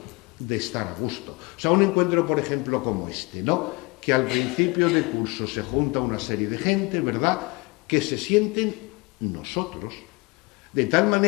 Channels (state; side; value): quieter; right; 26.4 dB